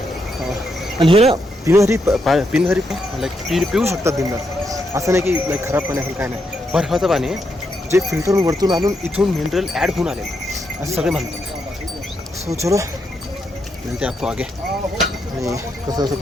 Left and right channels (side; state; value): both; normal; correlation 0.81